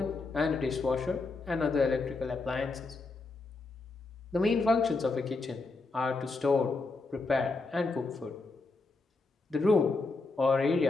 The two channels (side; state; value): right; quieter; 3.7 dB